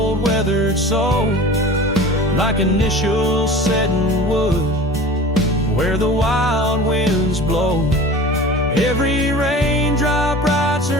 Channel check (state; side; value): normal; both; correlation 0.39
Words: weathered soul, like initials set in wood where the wild winds blow. Every raindrop writes